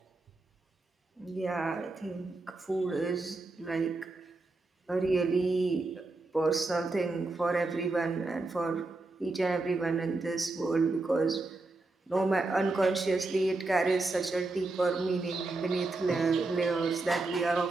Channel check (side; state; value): left; quieter; 3.2 dB